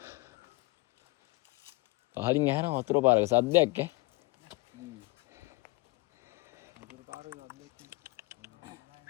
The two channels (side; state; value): right; quieter; 23.7 dB